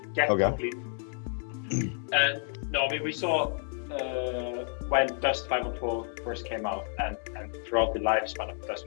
Yeah, okay. Complete. No, I mean, we saw when Dust 5.4 first came out, and throughout the lifespan of Dust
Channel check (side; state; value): right; silent; 58 dB below the other